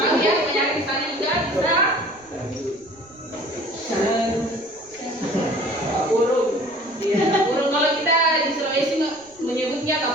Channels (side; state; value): right; noise; rumble, 29 dB below the sound